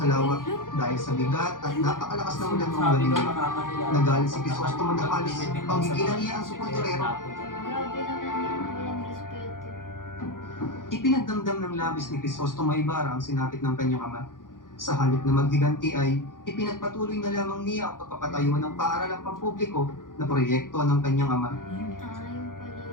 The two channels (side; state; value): right; late; 0.90 ms